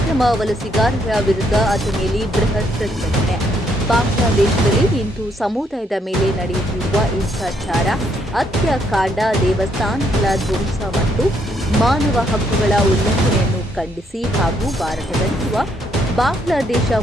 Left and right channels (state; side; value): normal; both; correlation 0.72